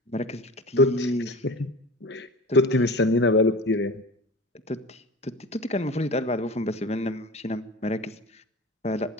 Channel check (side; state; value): both; normal; correlation 0.34